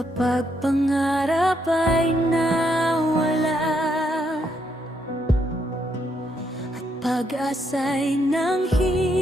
pangarap ay nawala at pag-asa'y nanghihina,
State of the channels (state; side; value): normal; both; correlation 0.76